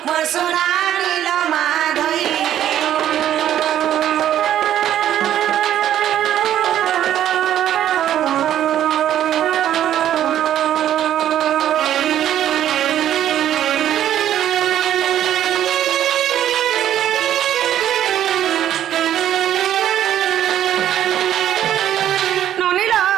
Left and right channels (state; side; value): quieter; left; 11.3 dB